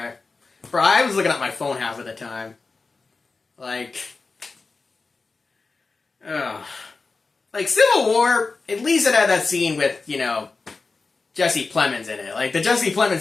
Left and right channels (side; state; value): right; quieter; 4.1 dB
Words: Bro, I was looking at my phone half of the time. Like, ugh. Like, Civil War, at least it had that scene with, Jesse Plemons in it. Like, the Jesse Plemons